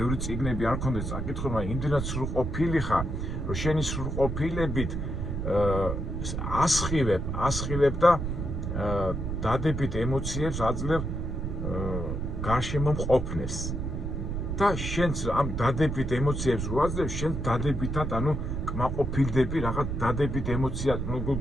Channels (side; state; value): right; noise; rumble, 3 dB below the sound